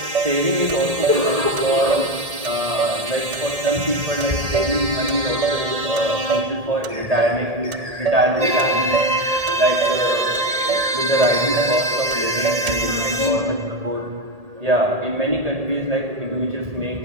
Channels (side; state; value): left; late; 1.8 ms